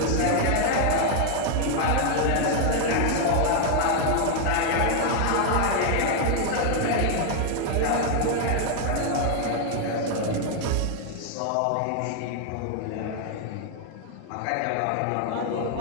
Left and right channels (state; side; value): different; both; correlation 0.00